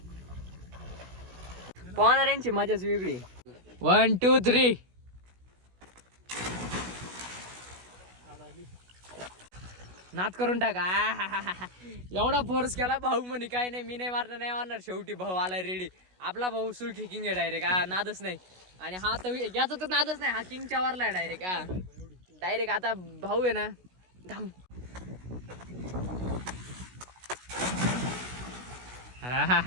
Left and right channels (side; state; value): left; late; 16 ms